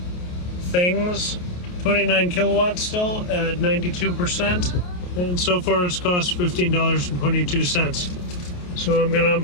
things. 29 kilowatts still at 92%. And so far it's cost $15.22. So I'm gonna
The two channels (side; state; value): right; late; 28 ms